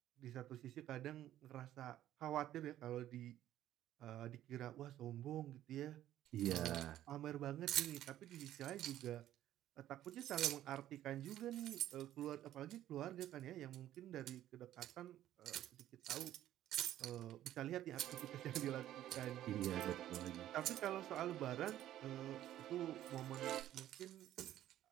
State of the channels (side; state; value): left; quieter; 12.7 dB